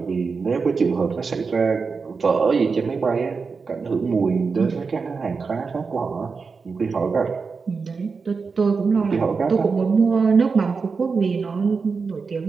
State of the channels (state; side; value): quieter; left; 4.9 dB